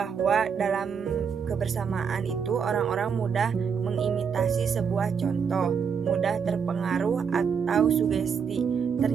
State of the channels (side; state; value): left; quieter; 6.6 dB